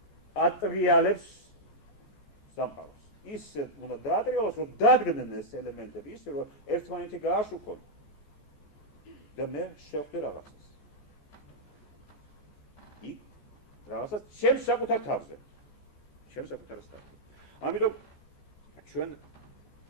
ატრიალებს სამყაროს. ისე უნდა დაატრიალოს, რომ დადგნენ ეს ელემენტები, ისე რომ ერთმანეთი გააშუქონ და მე შევხვდი რაღაცას. იქ რაღაცას ჩემს საკუთარ თავზე. ჩემს საკუთარ თავზე. ამიტომ ჩვენ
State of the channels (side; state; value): right; late; 14 ms